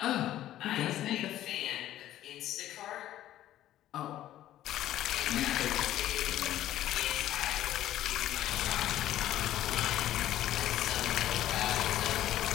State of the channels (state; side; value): quieter; right; 13.1 dB